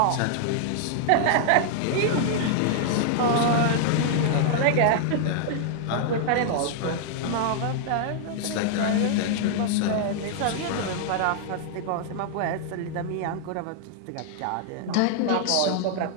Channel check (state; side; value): different; both; correlation -0.01